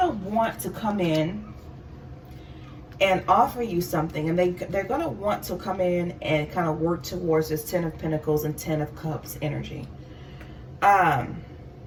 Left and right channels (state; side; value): identical; both; correlation 1.00